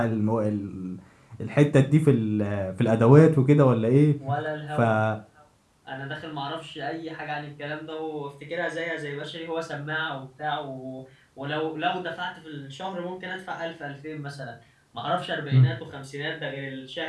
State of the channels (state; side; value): identical; both; correlation 1.00